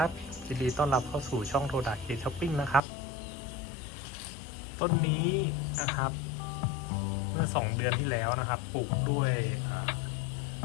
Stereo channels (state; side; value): drops out; right; at 2.8 s